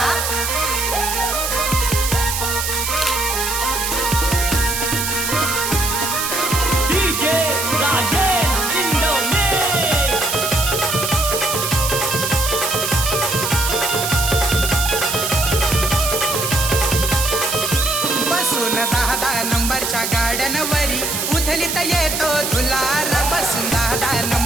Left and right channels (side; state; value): right; noise; hiss, 2 dB below the sound